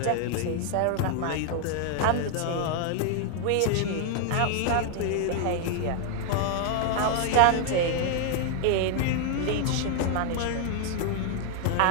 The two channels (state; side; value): different; both; correlation 0.00